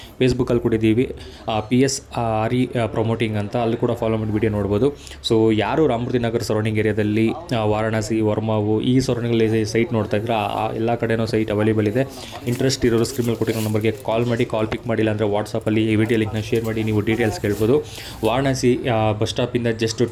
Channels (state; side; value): identical; both; correlation 1.00